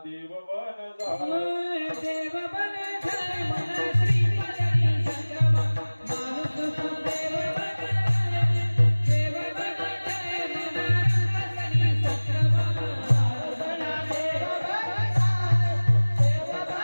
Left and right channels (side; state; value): both; inverted; correlation -1.00